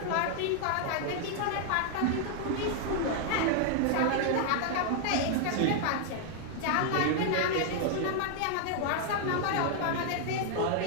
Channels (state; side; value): different; both; correlation 0.00